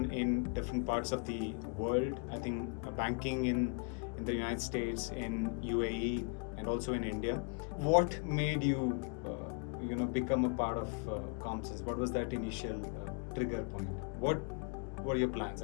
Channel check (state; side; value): quieter; right; 37.0 dB